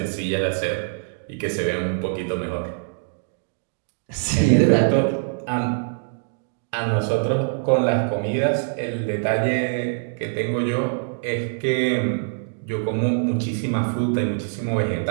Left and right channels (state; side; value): silent; left; digital silence